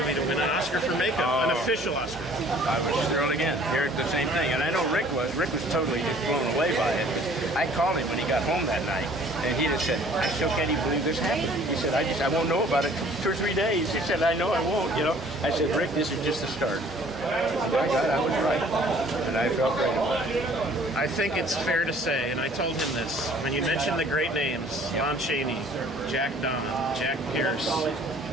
to win an Oscar for makeup, an official Oscar? I was thrilled again. Here the same thing. And I know Rick was totally blown away by it. I called him when he got home that night, and he just said, I still can't even believe this happened. He said, I won't know about it 2 or 3 days. He said, I know I won't, you know. I said, Rick, this is just the start. My God, I was right. And I felt right about it. I think it's fair to say, and I told him this, when you mentioned the great names, Lon Chaney, Jack Don, Jack Pierce,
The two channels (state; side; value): normal; both; correlation 0.54